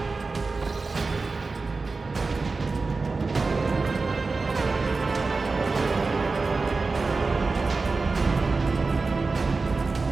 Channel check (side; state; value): left; quieter; 3.9 dB